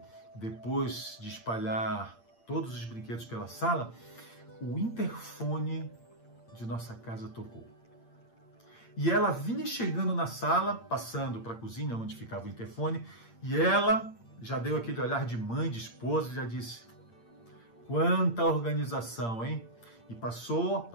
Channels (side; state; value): right; late; 8.7 ms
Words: depois de espalhar todos os brinquedos pela sala, o interfone de nossa casa tocou. E ela vinha chegando na sala, passando para a cozinha, onde ficava o interfone, e ela já deu aquele olhar de mãe, de esposa, e já disse: quanta organização, hein? E passou